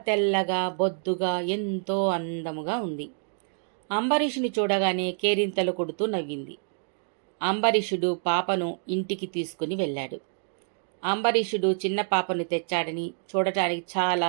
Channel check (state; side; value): silent; left; 57 dB below the other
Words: తెల్లగా బొద్దుగా ఎంతో అందముగా ఉంది. అంబరీషుని చూడగానే కేరింతలు కొడుతూ నవ్వింది. అంబరీషుడు పాపను ఇంటికి తీసుకుని వెళ్ళాడు. అంబరీషుడు చిన్న పాపను తెచ్చాడని చూడటానికి